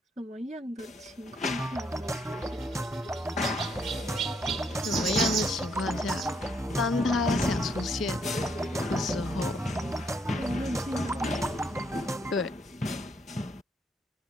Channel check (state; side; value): normal; both; correlation 0.72